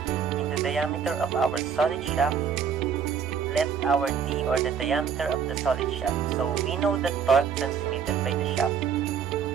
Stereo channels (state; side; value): quieter; left; 7.1 dB